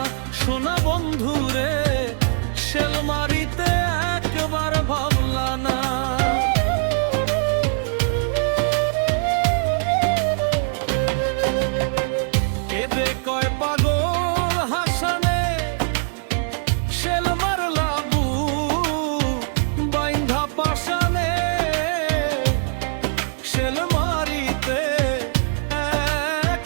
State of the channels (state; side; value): silent; left; digital silence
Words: সোনা বন্ধু রে, শেল মারিতে একবার ভাবলা না। কয় পাগল হাসানে, শেল মারলা বুক বাইন্ধা পাশানে, শেল মারিতে